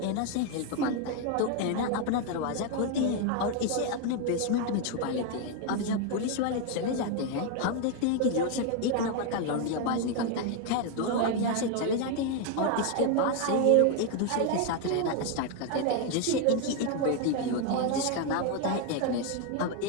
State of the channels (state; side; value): different; both; correlation 0.01